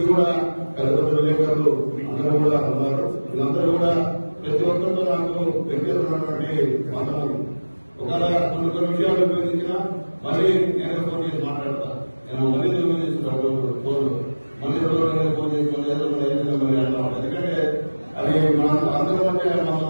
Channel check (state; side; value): inverted; both; correlation -1.00